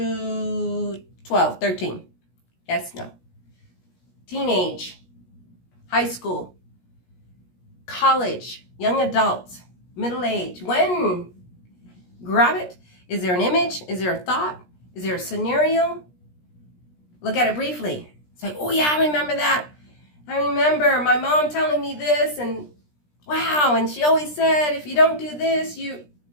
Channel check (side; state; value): right; late; 17 ms